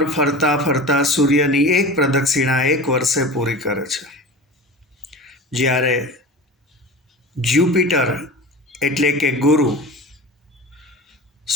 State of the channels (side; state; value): both; normal; correlation 0.34